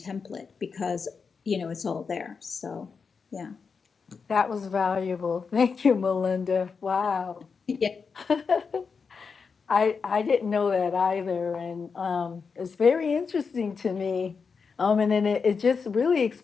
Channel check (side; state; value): right; quieter; 5.4 dB